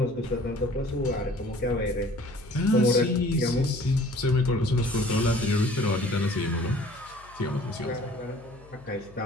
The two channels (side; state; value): left; noise; hum, 24 dB below the sound